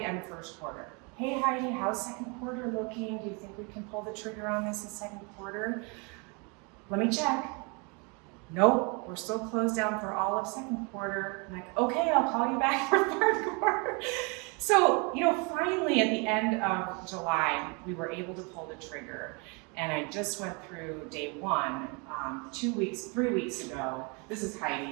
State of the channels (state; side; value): quieter; left; 32.1 dB